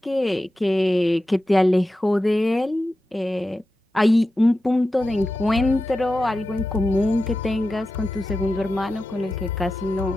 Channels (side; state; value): both; normal; correlation 0.92